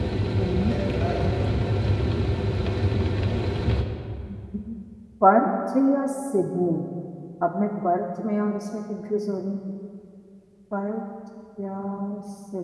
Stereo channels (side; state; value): both; identical; correlation 1.00